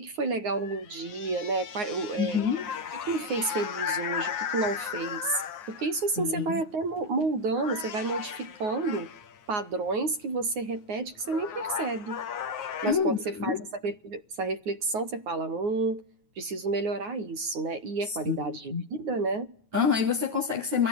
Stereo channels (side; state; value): left; late; 9.5 ms